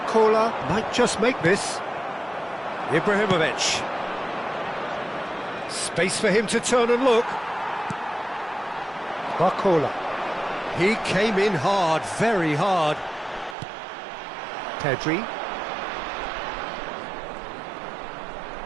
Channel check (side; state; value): left; drops out; at 13.6 s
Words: might just make this. Ibrahimovic. Space for him to turn and look. Barcola. He came in hard, very hard. Pedri.